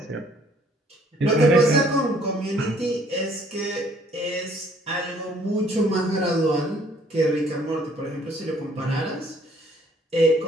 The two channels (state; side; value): normal; both; correlation 0.61